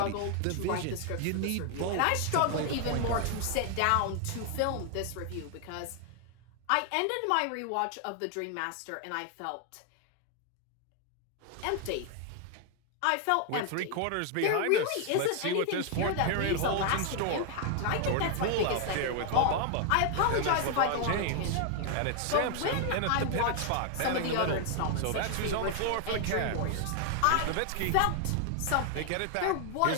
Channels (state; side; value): different; both; correlation 0.00